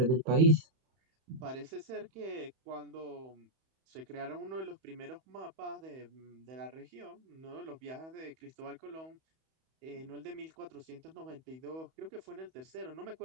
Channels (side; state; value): left; late; 31 ms